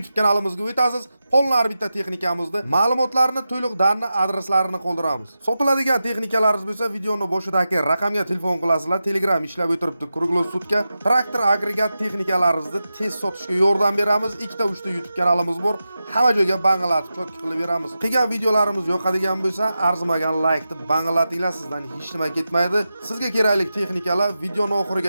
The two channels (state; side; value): inverted; both; correlation -0.91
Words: kanalimizga o'tasiz. Qolgan bitta texnikamizni, ma'lumotlarni, to'liq darni, adreslarini qoldiramiz. Sotiladigan texnikalaringiz bo'lsa, videoni boshidagi raqamga telefon qilasizlar. Telegram ishlab o'tiribdi. Kruglosutga traktor agregat texnikalaringizni tez sotishga yordam beramiz. 2-3 YouTube kanalimiz bor. Hamma joyga bang'alatib chotki qilib beramiz. Qilgan videolarimiz yoqadigan bo'lsa, arzimagan like deb bang'alatinglar, sizdan hech nima ketmaydi. Sizga kerakli texnikalar videoni